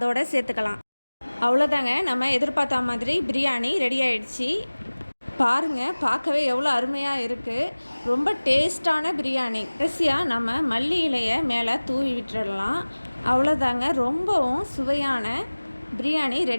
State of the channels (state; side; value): inverted; both; correlation -1.00